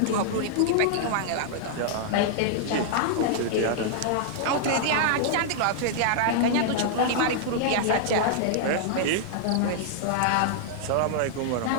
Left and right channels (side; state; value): both; different; correlation -0.01